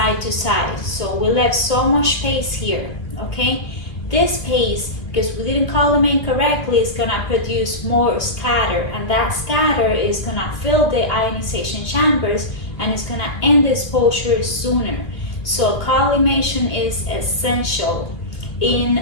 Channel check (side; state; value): right; late; 2.5 ms